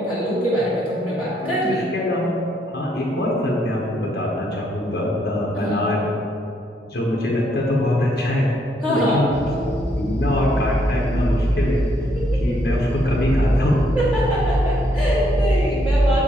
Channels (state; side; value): normal; both; correlation 0.72